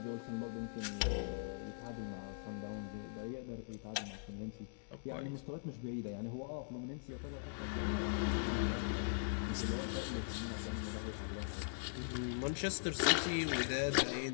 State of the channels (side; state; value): right; silent; digital silence